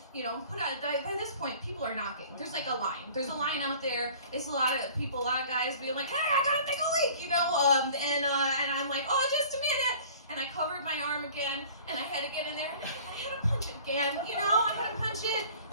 you know, put on, by this point, people are knocking. There's like a line. There's a line out there. It's a lot of people, a lot of guys being like, "Hey, I got a big leak," you know, and I'm like, "Oh, just a minute." And I covered my arm again, and I had to get in there, and I had to punch it again, you know, I had to punch it.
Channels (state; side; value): inverted; both; correlation -0.47